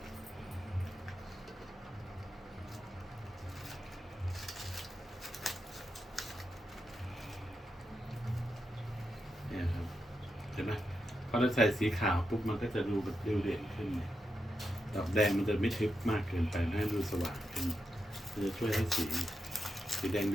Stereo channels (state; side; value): normal; both; correlation 0.86